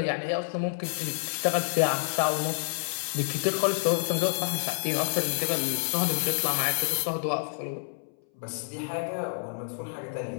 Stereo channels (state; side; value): silent; right; 59 dB below the other